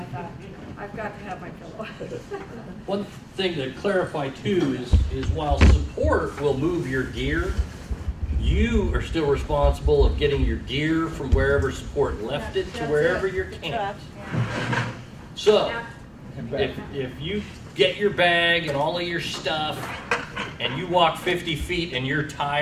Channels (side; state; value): both; identical; correlation 1.00